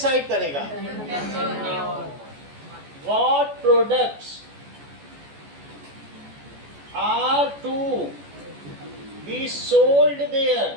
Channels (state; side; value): late; left; 14 ms